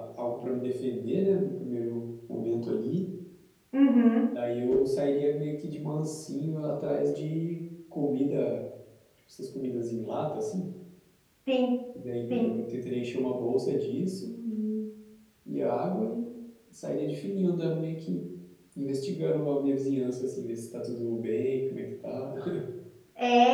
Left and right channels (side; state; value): both; identical; correlation 1.00